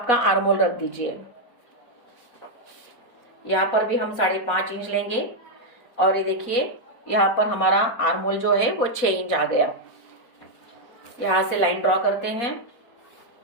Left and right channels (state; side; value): late; right; 4.1 ms